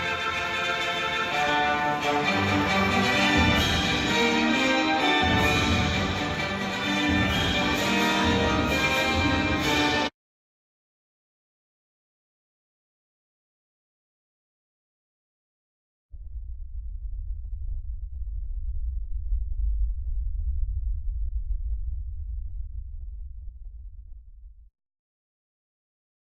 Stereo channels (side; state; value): both; identical; correlation 1.00